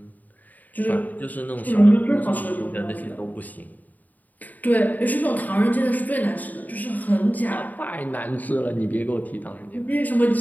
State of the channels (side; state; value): right; late; 0.081 ms